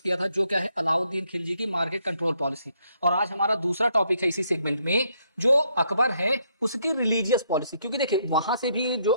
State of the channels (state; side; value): inverted; both; correlation -0.73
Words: किया था जो क्या है अलाउद्दीन खिलजी की मार्केट कंट्रोल पॉलिसी। और आज हमारा दूसरा टॉपिक है इसी सेगमेंट में, जो अकबर है उसकी रिलीजियस पॉलिसी। क्योंकि देखिए, वहां से भी जो